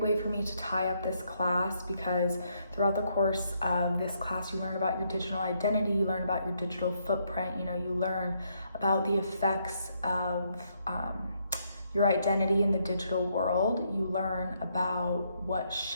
for me to tie up this class because throughout the course of this class, you learn about your digital identity, you learn about your digital footprint, you learn about the effects of your identity in the digital world. You learn about what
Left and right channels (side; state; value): both; inverted; correlation -0.74